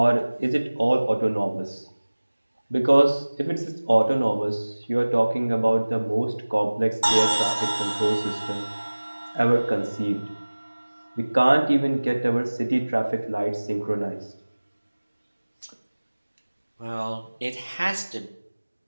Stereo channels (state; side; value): inverted; both; correlation -1.00